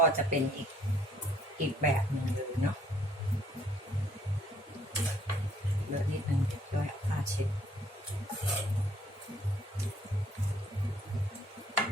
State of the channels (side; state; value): both; normal; correlation 0.62